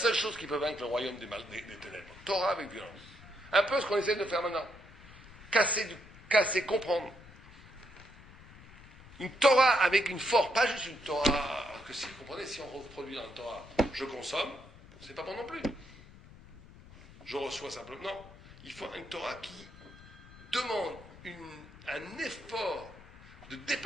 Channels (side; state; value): left; noise; rumble, 19 dB below the sound